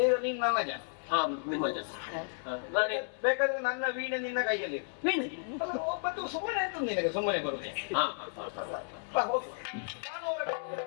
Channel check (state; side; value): silent; right; 56 dB below the other